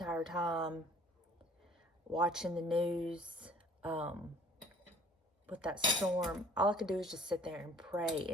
time watching the news with that storm, all I could do is just sit there and pray.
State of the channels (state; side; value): normal; both; correlation 0.54